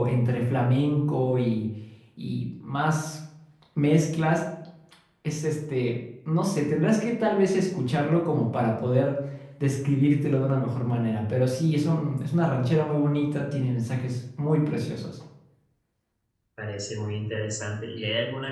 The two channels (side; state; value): both; identical; correlation 1.00